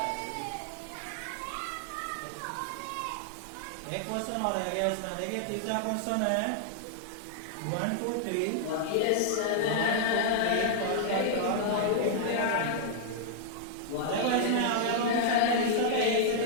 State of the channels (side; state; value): both; different; correlation -0.01